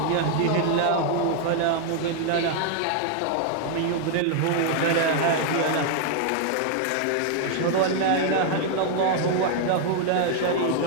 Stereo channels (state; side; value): different; both; correlation 0.00